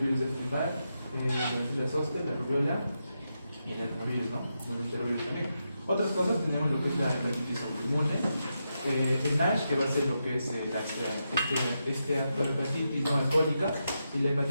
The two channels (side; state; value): both; inverted; correlation -0.86